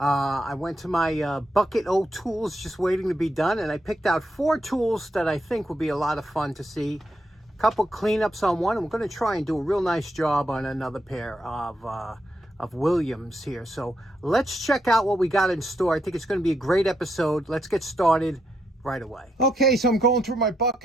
went to my bucket o' tools just waiting to be done, and I picked out 4 tools that I think will be a lot of fun to see. A couple cleanups on one, and we're going to try and do a real nice job on another pair of Williams here. So let's check out what we got in store. I think it's going to be a great episode. Let's get started right away. Okay, so I'm going through my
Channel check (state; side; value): normal; both; correlation 0.80